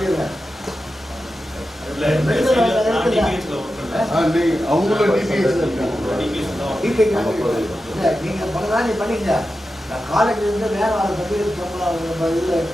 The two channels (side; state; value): both; normal; correlation 0.91